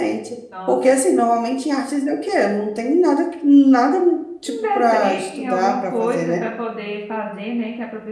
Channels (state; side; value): identical; both; correlation 1.00